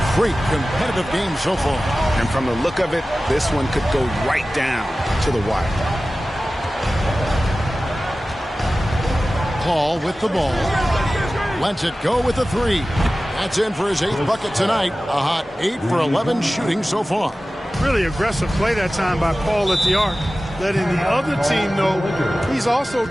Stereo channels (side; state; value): both; normal; correlation 0.96